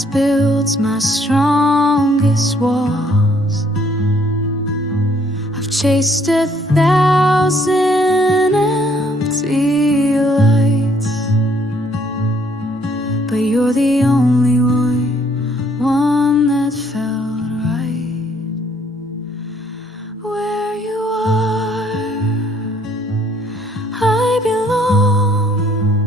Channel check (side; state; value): both; normal; correlation 0.65